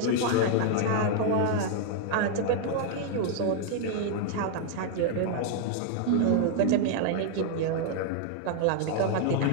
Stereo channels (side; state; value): both; different; correlation 0.00